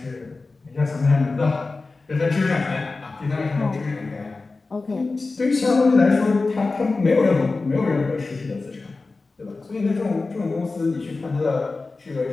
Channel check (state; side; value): quieter; right; 3.7 dB